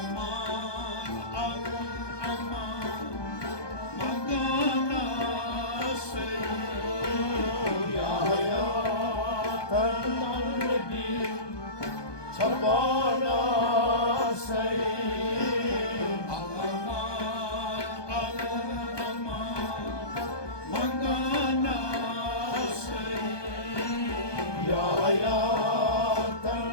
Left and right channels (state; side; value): late; right; 1.2 ms